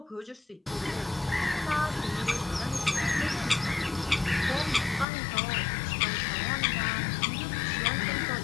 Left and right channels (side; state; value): right; drops out; at 5.1 s